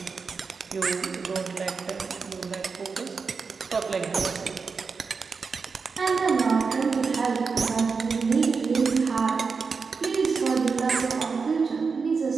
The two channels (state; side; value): quieter; left; 5.0 dB